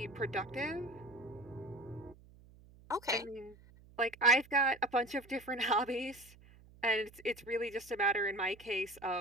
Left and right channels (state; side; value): noise; right; hum, 23 dB below the sound